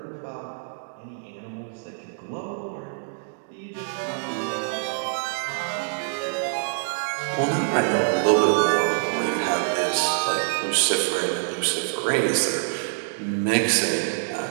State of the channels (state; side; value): silent; left; digital silence